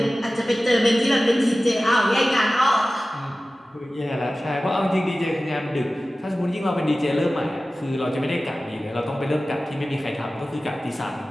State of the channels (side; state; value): both; normal; correlation 0.96